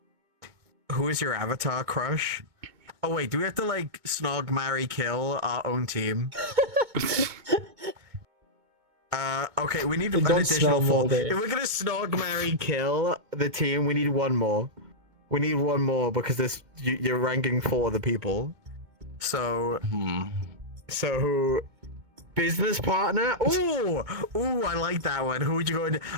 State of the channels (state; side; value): late; left; 2.2 ms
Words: Who is your avatar crush? Oh wait, do we have to like snog, marry, kill our own team? Okay, we need They an don't additional smell four. moldy. If we're gonna snog, marry, kill the team, we need one more. We need one more because you're ranking 4 of the people. So, business partner. Ooh, I like that one. Who would you go into?